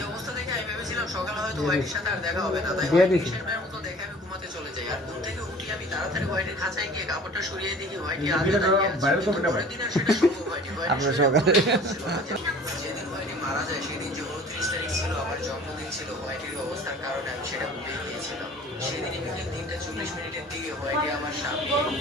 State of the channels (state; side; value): normal; both; correlation 0.47